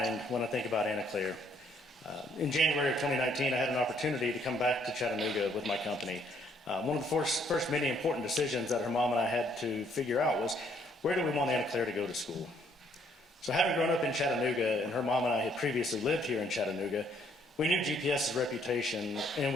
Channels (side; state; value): both; normal; correlation 0.67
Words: when I think about Anna Claire. In January of 2019, I had an opportunity to come back to Chattanooga with my company. One of the first many important decisions that her mom and I had to figure out was, where do we want Anna Claire to go to school? So having grown up in Chattanooga, and her mom and I had previously lived here in Chattanooga, we knew GPS's reputation, and